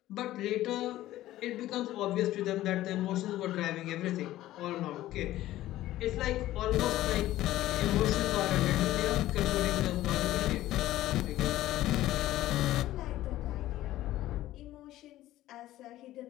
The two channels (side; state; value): right; quieter; 15.0 dB